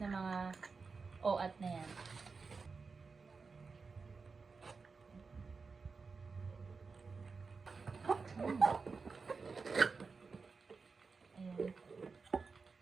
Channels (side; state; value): left; quieter; 4.7 dB